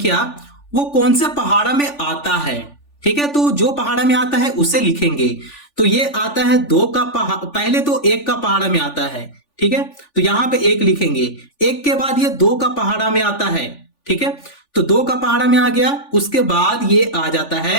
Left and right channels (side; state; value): right; late; 3.4 ms